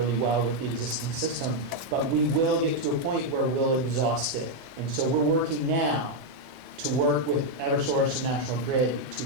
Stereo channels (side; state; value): left; late; 24 ms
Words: well with the existing system, but we will get to a point where we'll exhaust it. And so we're working now to work with Eversource and National Grid